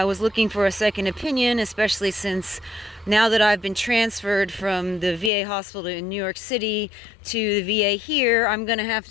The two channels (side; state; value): right; drops out; at 5.3 s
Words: was looking for a second opinion, especially since now that I've been transferred from the VA hospital in New York City to the VA here, I'm going to have